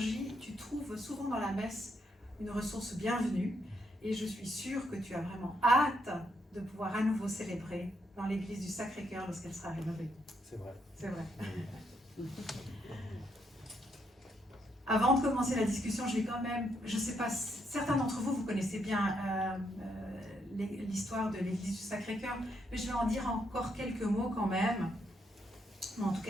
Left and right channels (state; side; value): normal; both; correlation 0.76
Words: tu trouves souvent dans la messe une ressource bienvenue, et je suis sûre que tu as vraiment hâte de pouvoir à nouveau célébrer dans l'église du Sacré-Cœur lorsqu'elle sera rénovée. C'est vrai. C'est vrai. Avant de commencer la discussion, je vais quand même, je ne sais pas, certains d'entre vous, vous connaissez bien l'histoire de l'église du Sacré-Cœur, mais je vais en dire encore quelques mots quand même. En tout